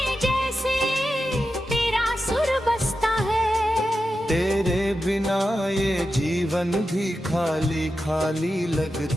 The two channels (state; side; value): normal; both; correlation 0.90